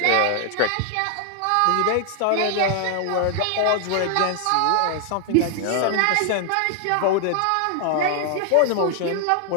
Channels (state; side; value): different; both; correlation 0.00